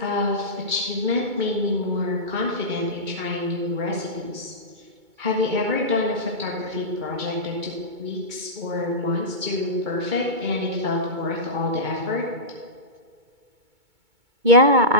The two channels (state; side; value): late; left; 2.2 ms